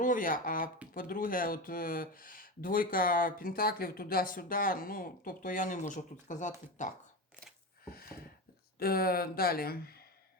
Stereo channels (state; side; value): normal; both; correlation 0.21